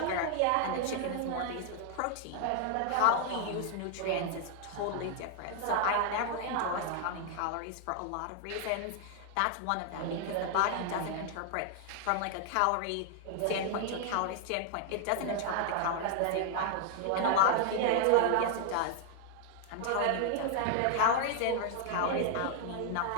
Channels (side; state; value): both; different; correlation 0.00